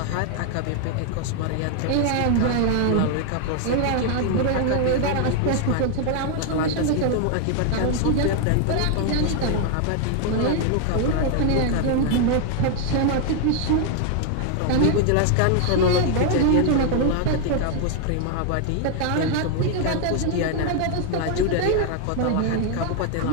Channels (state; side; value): different; both; correlation 0.00